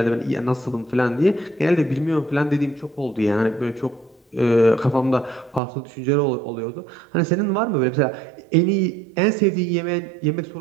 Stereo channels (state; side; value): drops out; left; at 5.6 s